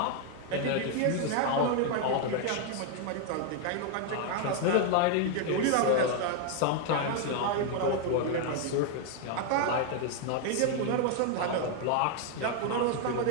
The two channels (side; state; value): both; different; correlation 0.00